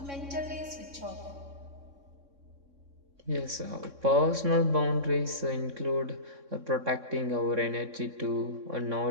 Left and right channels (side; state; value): left; late; 3.6 ms